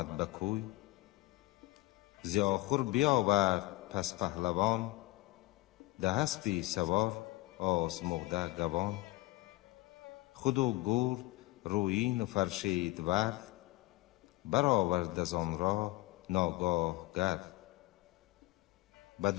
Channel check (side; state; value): right; quieter; 20.3 dB